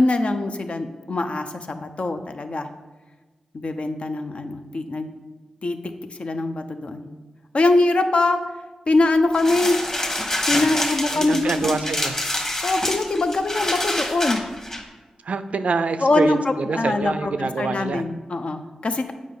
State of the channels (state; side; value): normal; both; correlation 0.88